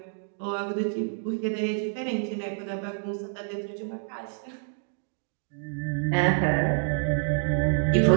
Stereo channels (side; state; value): left; silent; digital silence